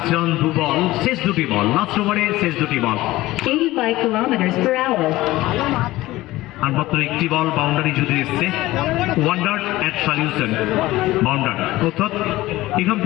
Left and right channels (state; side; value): quieter; right; 17.6 dB